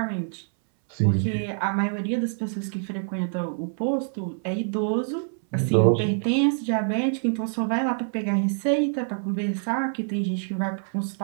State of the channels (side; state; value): left; silent; 61 dB below the other